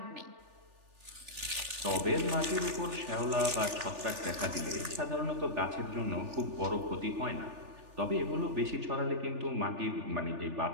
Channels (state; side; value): late; left; 3.4 ms